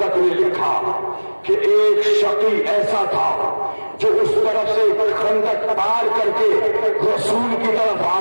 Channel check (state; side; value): inverted; both; correlation -1.00